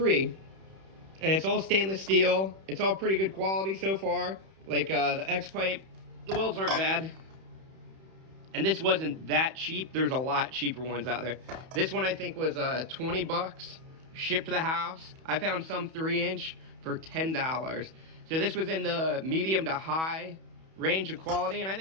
And it's all stainless steel. It's all pretty good quality so far. Like the X-pipe, the welds aren't bad. And this wasn't that cheap. There's a lot cheaper ones out there. This one I think was 20 bucks, shipped to the house. I found some 3-inch for $10. So this was in the medium to high range of quality, and I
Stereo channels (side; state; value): left; late; 31 ms